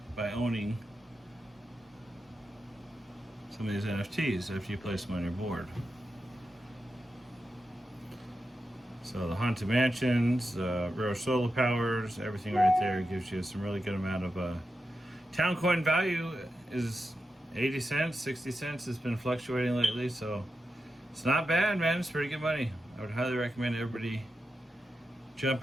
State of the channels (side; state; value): both; normal; correlation 0.89